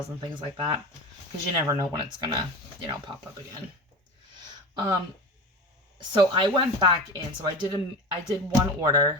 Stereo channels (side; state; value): both; normal; correlation 0.28